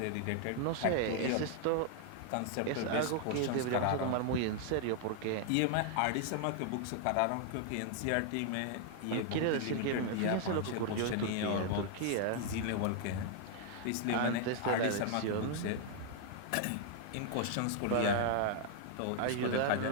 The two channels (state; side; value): different; both; correlation 0.00